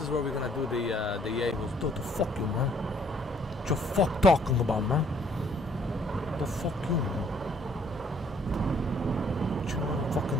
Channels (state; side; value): normal; both; correlation 0.63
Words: where we're gonna do the Yahoo. What the fuck you, man? What you fuck talking about, man? What the fuck you, man? What you know,